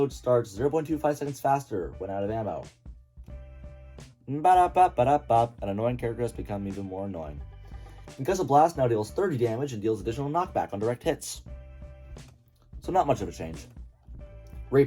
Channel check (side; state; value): both; identical; correlation 1.00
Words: starts 0.25 seconds faster when out of ammo. An annoying character has become even more annoying. Concussive Blast now deals 30 damage and deals additional knockback on direct hits. So not much of a change.